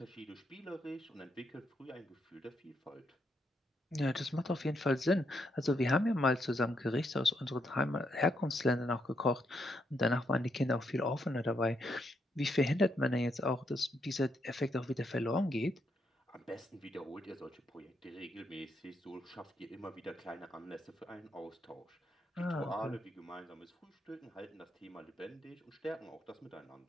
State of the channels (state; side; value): normal; both; correlation 0.78